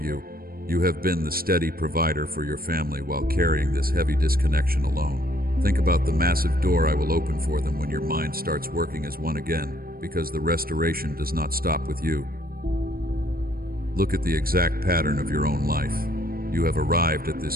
You have been the steady provider for your family while carrying this heavy disconnection alone. Think about the massive door I will open for them when your mind starts working as one again, because the restoration does not stop with you. Look at the exact pattern of your own life. You have arrived at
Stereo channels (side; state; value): left; late; 0.43 ms